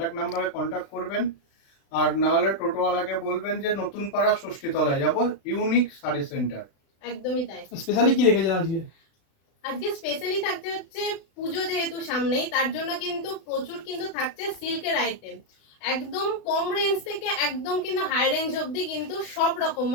নাম্বারে কন্ট্যাক্ট করবেন। আর নাহলে টোটোওয়ালাকে বলবেন যে নতুন পাড়া ষষ্ঠীতলায় যাব, ইউনিক শাড়ি সেন্টার। একদমই তাই। স্পেশালি কি রেখেছেন আজকে? আজকে স্পেশালি থাকছে হচ্ছে পুজো যেহেতু সামনেই, তার জন্য কিন্তু প্রচুর কিন্তু থাকছে সিল্কের আইটেম। একদম কম রেঞ্জ থেকে একদম কিন্তু হাই রেঞ্জ অবধি কিন্তু সব রকম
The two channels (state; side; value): late; right; 36 ms